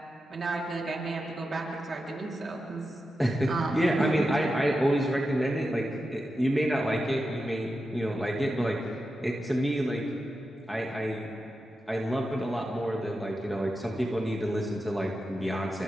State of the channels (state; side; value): normal; both; correlation 0.90